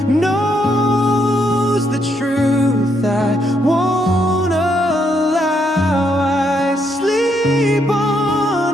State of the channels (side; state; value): both; normal; correlation 0.75